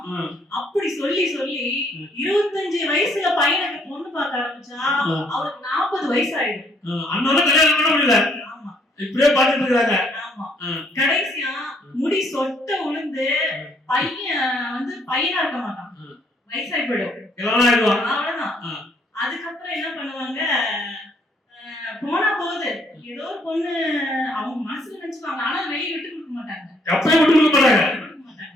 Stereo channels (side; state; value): both; normal; correlation 0.67